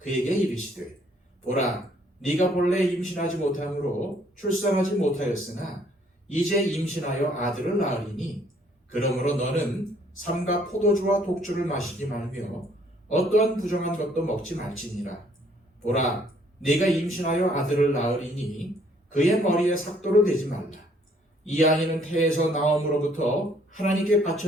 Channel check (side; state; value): both; normal; correlation 0.63